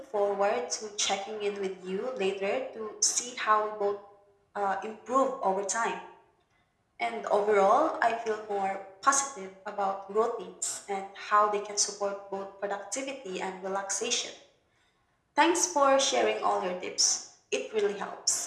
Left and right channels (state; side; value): identical; both; correlation 1.00